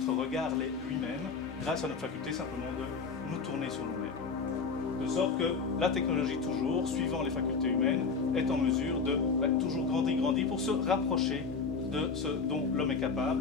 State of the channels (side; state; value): right; quieter; 5.0 dB